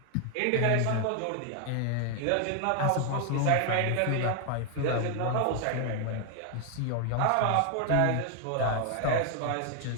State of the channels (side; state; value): both; different; correlation 0.00